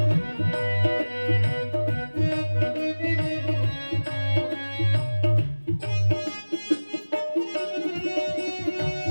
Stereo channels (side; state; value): both; inverted; correlation -1.00